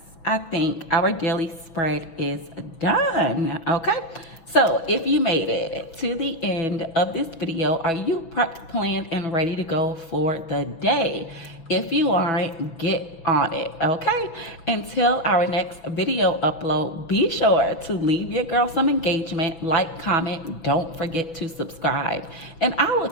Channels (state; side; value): late; right; 6.1 ms